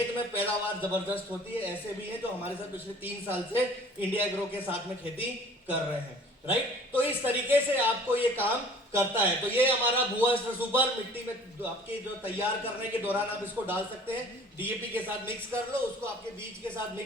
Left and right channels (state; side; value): normal; both; correlation 0.49